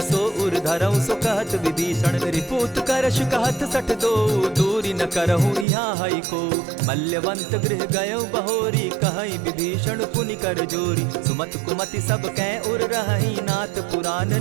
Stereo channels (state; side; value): drops out; left; at 5.7 s